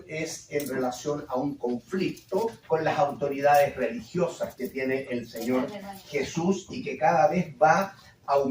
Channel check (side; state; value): both; identical; correlation 1.00